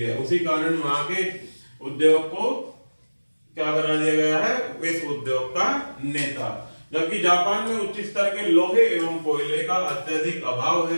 उसी कारण वहां के उद्योग को क्या बना दिया गया है, विश्व उद्योग का नेता। जबकि जापान में उच्च स्तर के लोहे एवं कोयले का अत्यधिक अभाव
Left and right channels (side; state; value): both; inverted; correlation -1.00